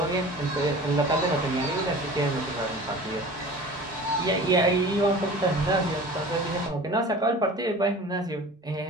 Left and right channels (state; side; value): normal; both; correlation 0.40